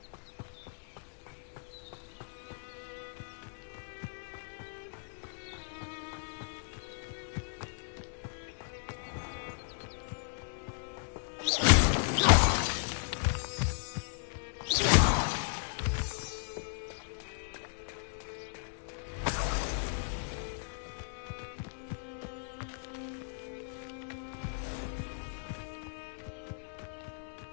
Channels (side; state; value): right; silent; digital silence